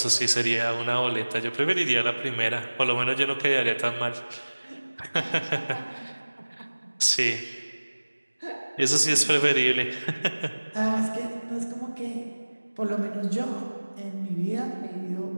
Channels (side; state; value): both; inverted; correlation -1.00